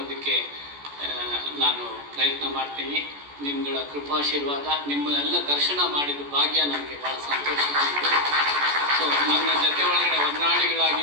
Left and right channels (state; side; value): late; left; 14 ms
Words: ನಾನು ಪ್ರಯತ್ನ ಮಾಡ್ತೀನಿ. ನಿಮ್ಮಗಳ ಕೃಪಾಶೀರ್ವಾದ, ನಿಮ್ಮನ್ನೆಲ್ಲ ದರ್ಶನ ಮಾಡಿದ ಭಾಗ್ಯ ನನಗೆ ಭಾಳ ಸಂತೋಷ. ಸೊ ನನ್ನ ಜೊತೆ ಒಳಗಡೆ